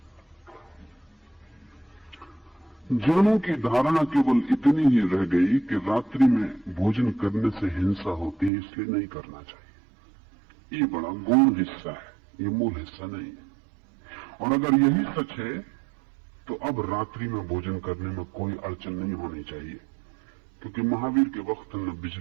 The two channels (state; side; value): drops out; left; at 8.5 s